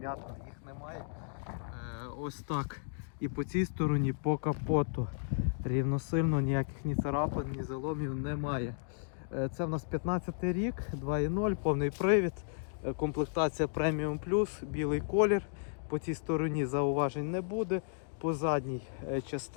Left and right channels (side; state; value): right; silent; digital silence